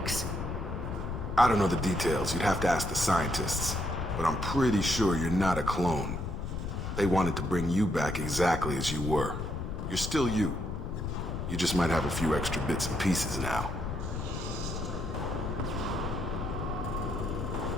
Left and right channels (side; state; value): left; noise; rumble, 4 dB below the sound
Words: I don't know the details. You'd have to ask the scientists. But I'm pretty sure you're not a clone. They wanted to bring you back exactly as you were. You're still you. You just might have a few extra bits and pieces now.